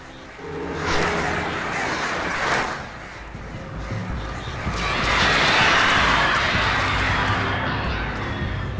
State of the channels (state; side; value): identical; both; correlation 1.00